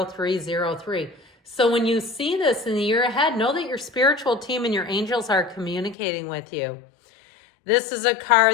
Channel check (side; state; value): right; drops out; at 6.0 s